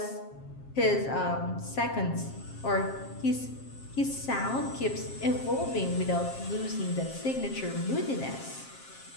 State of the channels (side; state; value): right; late; 7.5 ms